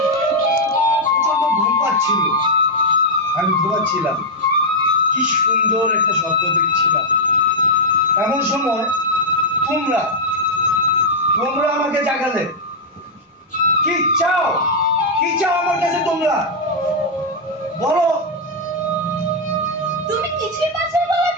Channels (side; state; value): both; normal; correlation -0.04